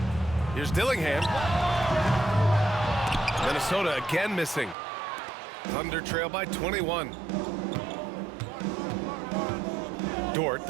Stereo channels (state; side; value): drops out; left; at 4.8 s